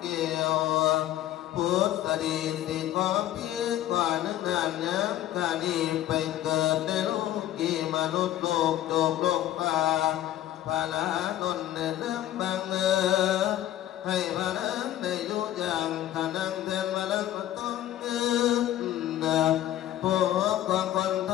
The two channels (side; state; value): right; quieter; 13.1 dB